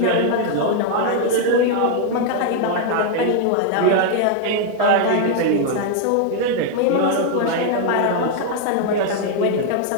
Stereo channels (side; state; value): both; different; correlation 0.00